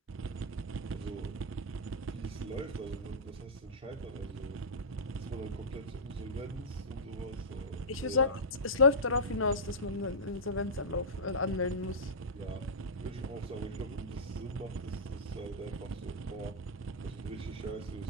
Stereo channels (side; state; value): both; normal; correlation -0.15